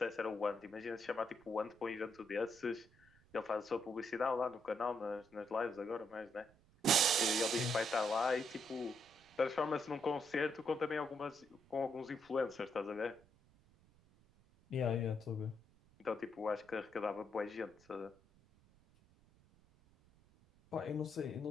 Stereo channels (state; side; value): noise; right; rumble, 28 dB below the sound